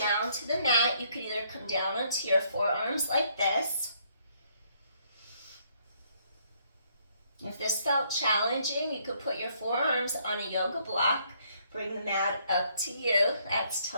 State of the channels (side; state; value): both; inverted; correlation -0.68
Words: to the mat. You could either come down onto your forearms like this. If this felt challenging, you could put your forearms on a yoga block. Bring the mat up to you. That's